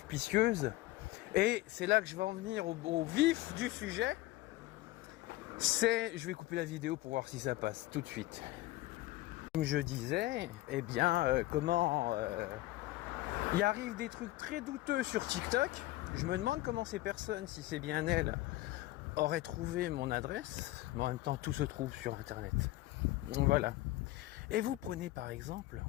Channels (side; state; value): right; quieter; 17.6 dB